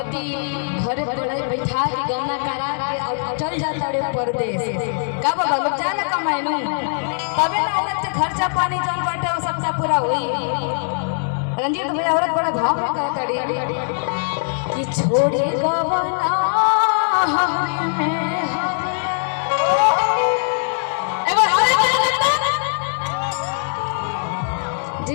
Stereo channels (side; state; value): right; silent; digital silence